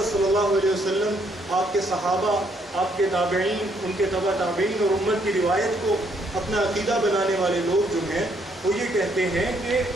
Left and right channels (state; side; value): normal; both; correlation 0.70